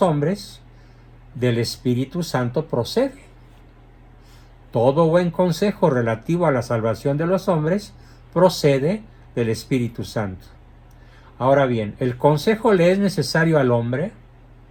hombres del Espíritu Santo procede. Todo buen consejo relativo a la salvación de los hombres procede del Espíritu Santo. Ahora bien, el consejo le es necesario al hombre,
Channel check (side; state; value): both; identical; correlation 1.00